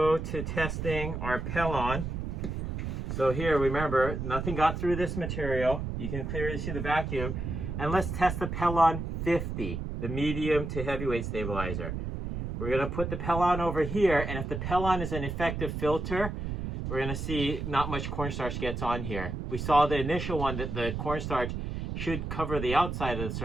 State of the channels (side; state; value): right; noise; rumble, 4 dB below the sound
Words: to testing our Pelon. So here, remember, nothing got through this material. You can clearly see the vacuum. And let's test the Pelon 50, the medium to heavyweight stabilizer. We're going to put the Pelon over here, and if the Pelon is an effective filter, we're going to see not much cornstarch gets on here. We saw the initial one that the cornstarch should cover the outside of the